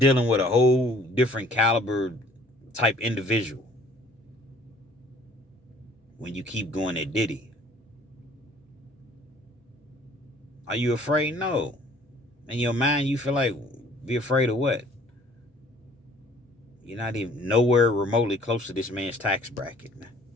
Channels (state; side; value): normal; both; correlation 0.55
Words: with a whole different caliber type individual when you keep going at Diddy. Are you afraid? No. In your mind, you feel like, be afraid of what? You're not even nowhere remotely close to this man's tax bracket, man.